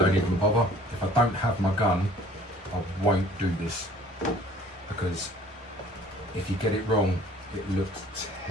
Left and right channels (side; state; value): both; normal; correlation 0.52